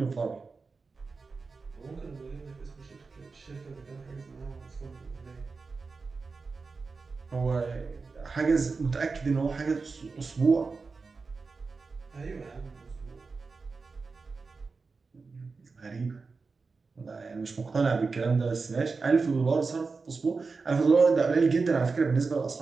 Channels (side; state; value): left; quieter; 4.4 dB